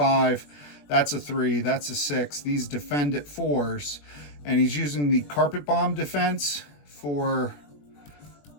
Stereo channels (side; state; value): right; late; 21 ms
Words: That's a 3. That's a 6. These defend at 4s. And he's using the carpet bomb defense for